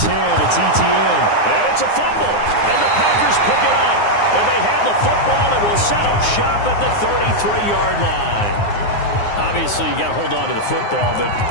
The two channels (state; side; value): late; right; 9.6 ms